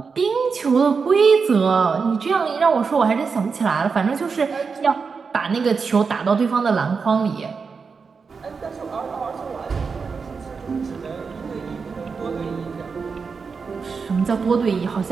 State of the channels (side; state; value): left; quieter; 5.2 dB